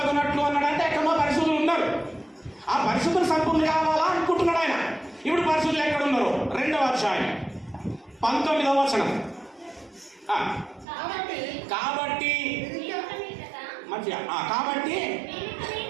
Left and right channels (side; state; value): left; drops out; at 10.9 s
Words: అన్నాడంటే ఎక్కడో పరిశుద్ధులు ఉన్నారు. ఆ పరిశుద్ధులు సంపూర్ణులు కావాలా అనుకుంటున్నాడు ఆయన. ఇప్పుడు పరిశుద్ధులు ఎక్కడ ఉన్నారు? 2వ అధ్యాయం 19వ వచనం. కాబట్టి మంచిగా కాబట్టి